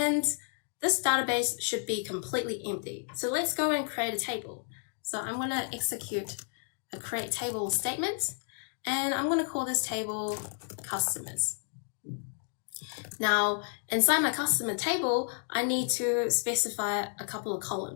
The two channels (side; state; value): right; silent; 57 dB below the other